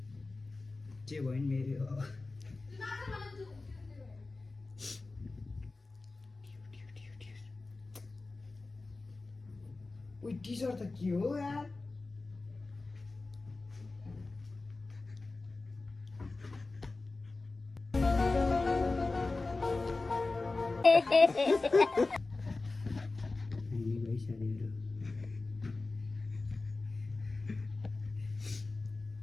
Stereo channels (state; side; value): quieter; right; 3.5 dB